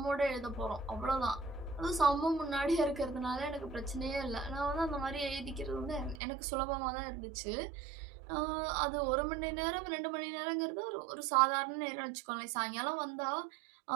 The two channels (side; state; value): left; drops out; at 6.2 s